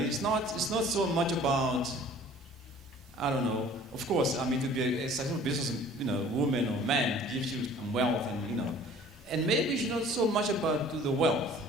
not so much about, I don't know, of course, to be a successful business, woman or man gives you some wealth and maybe it's not so much about the wealth.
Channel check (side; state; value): both; normal; correlation 0.50